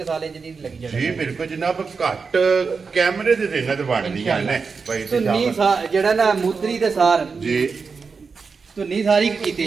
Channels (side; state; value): left; quieter; 5.0 dB